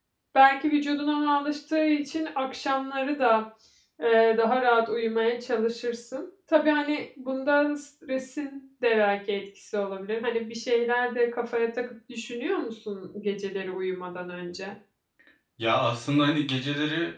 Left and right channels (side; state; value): both; identical; correlation 1.00